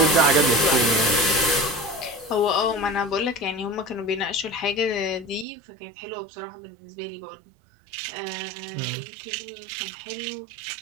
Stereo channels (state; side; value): drops out; left; at 5.5 s